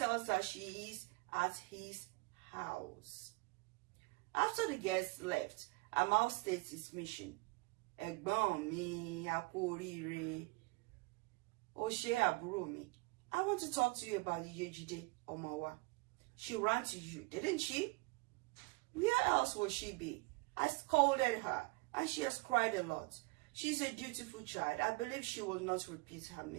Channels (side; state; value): left; quieter; 26.3 dB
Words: her she is at his house. After the guests left, Amal states his mission. Ẹ̀gbọ́n mi, a kú oríire. Ó ṣé àbúrò mi. I want to talk to you about Yejide Omowa. She ran to you, didn't she? Where else would she be? I scolded her, and she has cried a lot. She's a dutiful child. I believe she will not repeat her